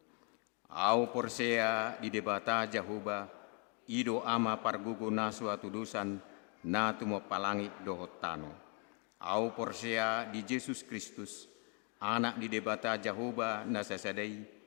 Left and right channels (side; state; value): right; quieter; 36.4 dB